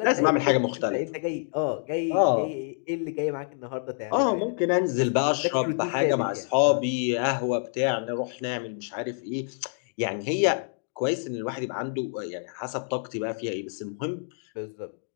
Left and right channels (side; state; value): right; silent; digital silence